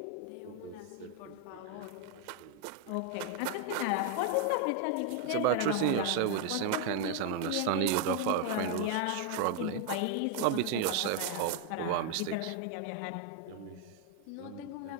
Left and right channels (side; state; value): both; different; correlation 0.00